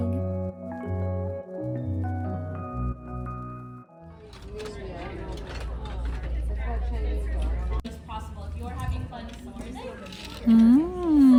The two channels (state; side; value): identical; both; correlation 1.00